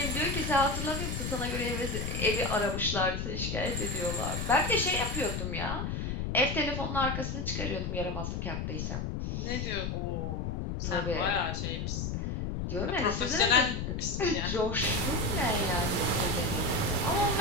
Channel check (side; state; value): left; noise; rumble, 2 dB below the sound